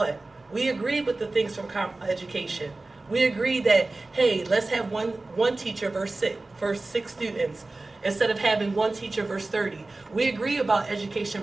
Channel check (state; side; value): quieter; left; 3.2 dB